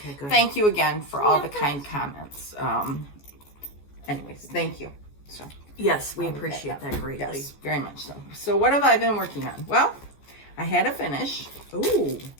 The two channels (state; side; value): late; right; 14 ms